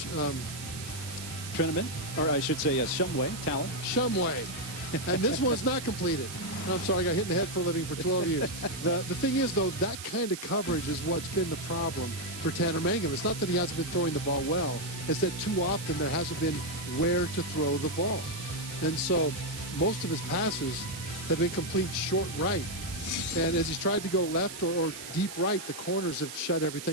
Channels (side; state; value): right; noise; hiss, 10 dB below the sound